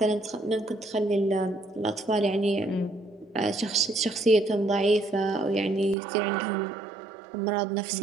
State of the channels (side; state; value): left; drops out; at 6.0 s